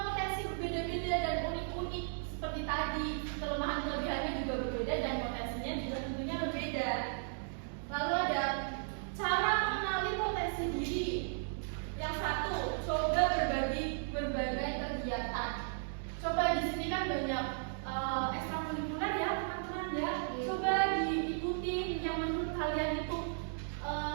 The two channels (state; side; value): silent; left; digital silence